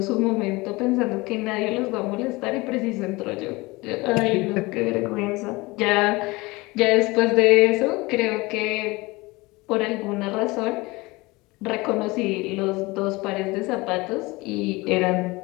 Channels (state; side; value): quieter; right; 22.8 dB